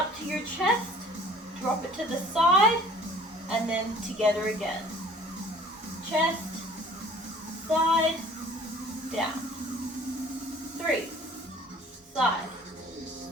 to your chest. Drop it to the side, and then together again. Chest, side, down. 3, side,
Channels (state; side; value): normal; both; correlation 0.52